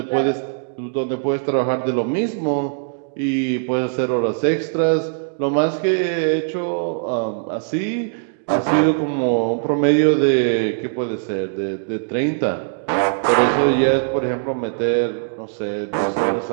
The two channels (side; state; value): left; silent; digital silence